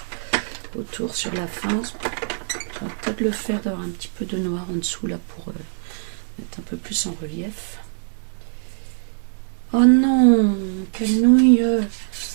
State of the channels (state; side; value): silent; left; digital silence